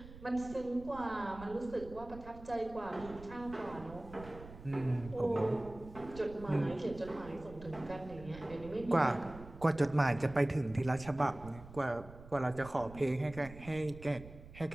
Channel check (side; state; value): right; noise; rumble, 16 dB below the sound